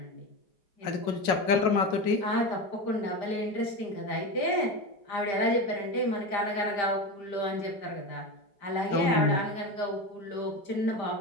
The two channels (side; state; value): right; late; 5.0 ms